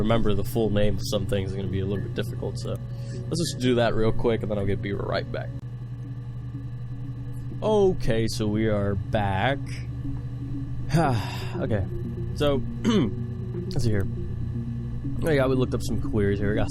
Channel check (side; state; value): both; identical; correlation 1.00